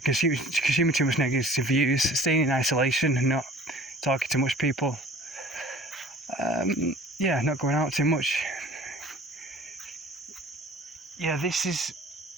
consuming too much negative views, staying in isolation and not talking to much people, not going out too much. That's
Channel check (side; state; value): both; normal; correlation 0.48